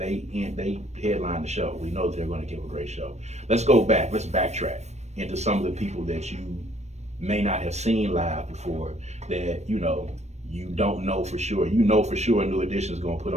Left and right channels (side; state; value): left; late; 0.32 ms